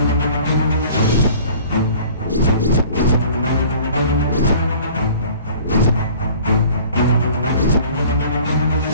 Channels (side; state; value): both; inverted; correlation -0.48